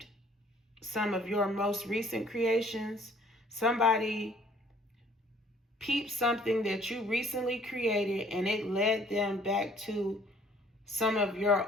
some of your most recent creations. Somebody peeped something that you recently created, and it led them back to some of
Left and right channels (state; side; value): normal; both; correlation 0.58